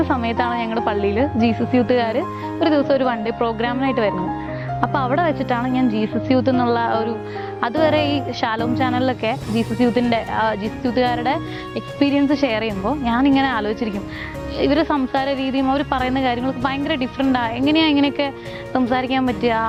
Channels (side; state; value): both; identical; correlation 1.00